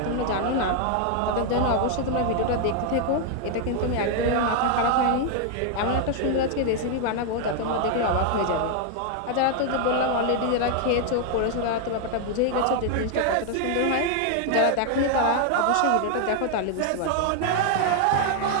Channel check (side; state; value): both; different; correlation 0.00